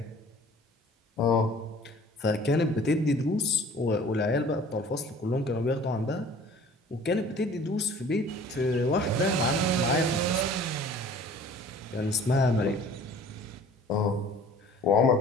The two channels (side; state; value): both; normal; correlation 0.49